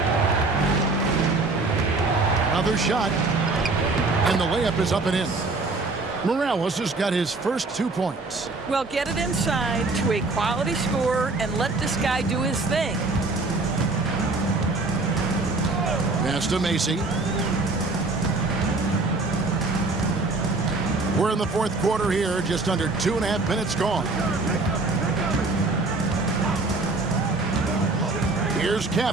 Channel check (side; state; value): left; quieter; 3.4 dB